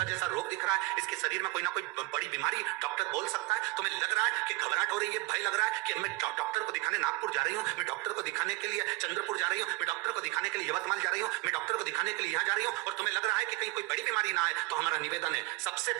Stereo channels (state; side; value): quieter; left; 22.8 dB